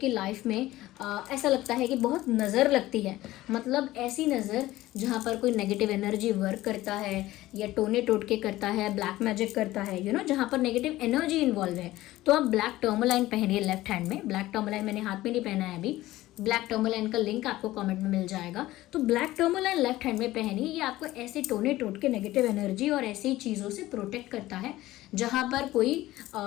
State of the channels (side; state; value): right; quieter; 16.6 dB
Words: लाइफ में ऐसा लगता है कि बहुत नज़र लगती है, मतलब ऐसी नज़र जहाँ पर कोई नेगेटिव एनर्जी वर्क करता है, या टोने टोटके करता है, ब्लैक मैजिक करता है, जहाँ पर नेगेटिव एनर्जी इन्वॉल्व है, तो आप ब्लैक टर्मोलाइन पहनिए लेफ्ट हैंड में। ब्लैक टर्मोलाइन मैंने हाथ में नहीं पहना है अभी, ब्लैक टर्मोलाइन का लिंक आपको कमेंट में मिल जाएगा। तो ब्लैक टर्मोलाइन लेफ्ट हैंड में पहनिए, ये आपको ऐसे टोने टोटके नेगेटिव एनर्जी और ऐसी चीज़ों से प्रोटेक्ट करता है जहाँ पर कोई